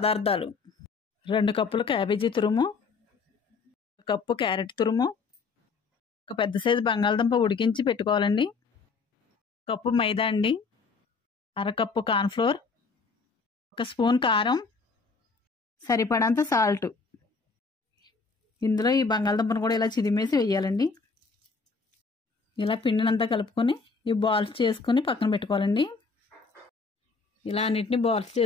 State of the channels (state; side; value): quieter; right; 4.5 dB